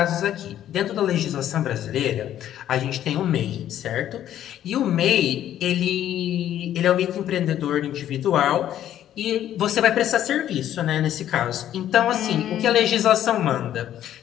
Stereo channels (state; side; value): quieter; right; 11.5 dB